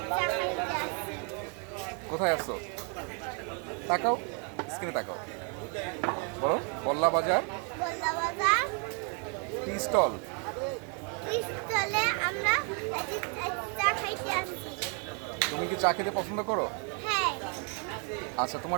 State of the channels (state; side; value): quieter; left; 37.7 dB